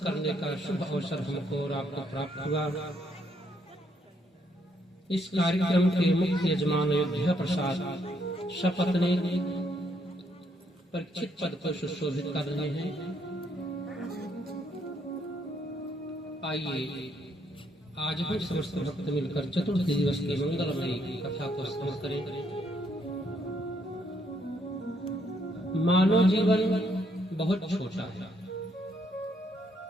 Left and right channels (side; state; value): both; normal; correlation 0.72